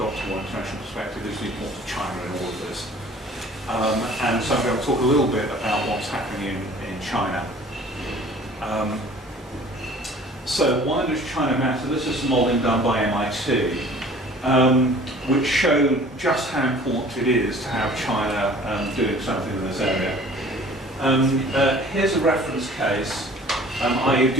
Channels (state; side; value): normal; both; correlation 0.49